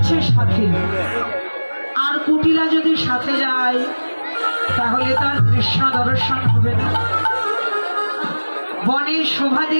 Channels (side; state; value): both; inverted; correlation -1.00